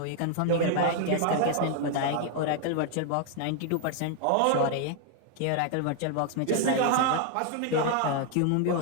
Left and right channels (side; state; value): both; different; correlation 0.00